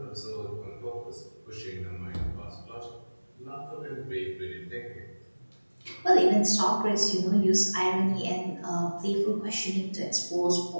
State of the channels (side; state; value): both; inverted; correlation -1.00